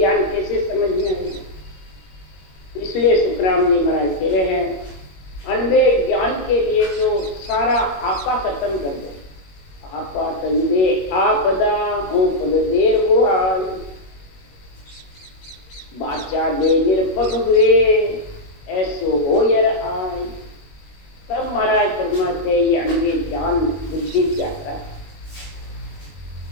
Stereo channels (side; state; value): right; late; 21 ms